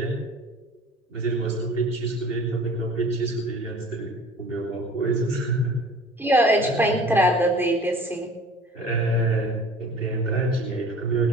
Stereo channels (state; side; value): normal; both; correlation 0.45